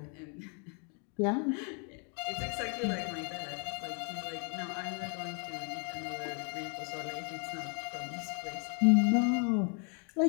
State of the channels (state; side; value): quieter; right; 39.1 dB